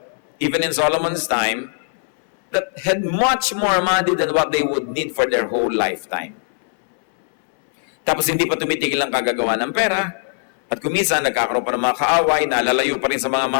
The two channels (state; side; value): silent; right; 66 dB below the other